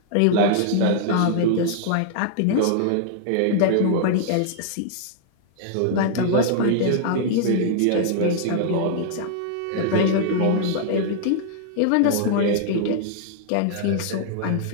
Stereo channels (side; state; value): both; different; correlation -0.01